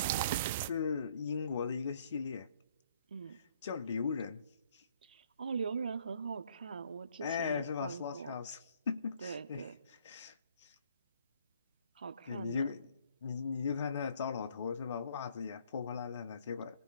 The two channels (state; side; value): inverted; both; correlation -0.63